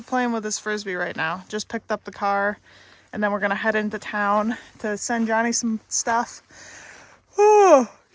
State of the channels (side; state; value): both; identical; correlation 1.00